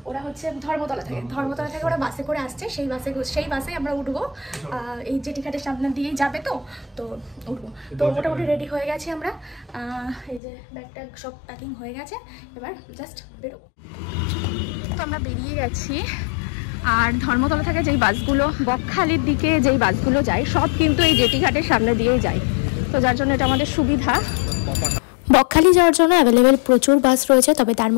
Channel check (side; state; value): right; drops out; at 10.4 s